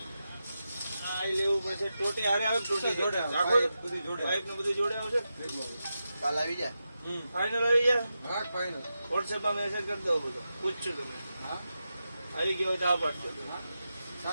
આ લેવું પછી ટોટી હારે આવે ટોટી જોડે આવે. આખો બધું જોડે પાઇપ ને બધું જોડે આવશે કાલ આવી જાય હમ ફાઇનલ આવી જાય હા ફાઇનલ વોટ્સએપમાં મેસેજ કરી દો બધો પૂછશું તમે હા આવી ગયો હોય તો આ પાડજો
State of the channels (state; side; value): inverted; both; correlation -0.89